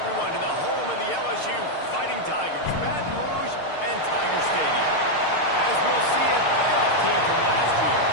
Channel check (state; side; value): late; right; 6.6 ms